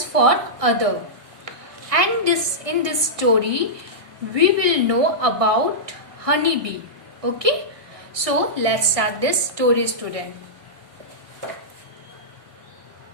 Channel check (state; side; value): late; left; 1.6 ms